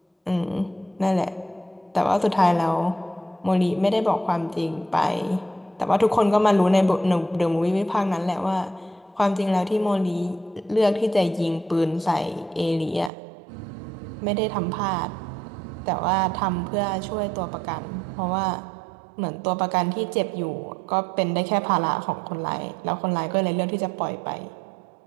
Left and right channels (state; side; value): drops out; left; at 13.1 s